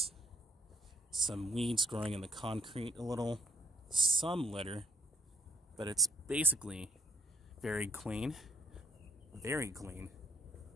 some weeds growing in the concrete a little, some litter, but it's basically very clean. Very clean.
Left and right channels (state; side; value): normal; both; correlation 0.63